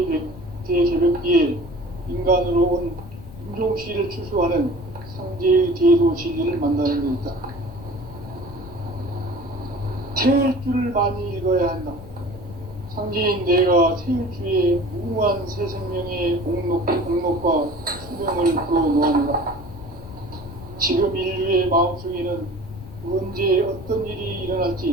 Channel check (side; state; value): left; noise; rumble, 16 dB below the sound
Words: 대개벽기에 인간으로 온 인종씨를 추수하는 상제의 대도 진리를 만나는 데 있다. 태일주를 많이 읽어야 한다. 상제인 내가 태일주의 무궁한 새 생명의 공록과 수명을 불어놓아노라. 지금 인류의 마음속에는 언제 어떤 일이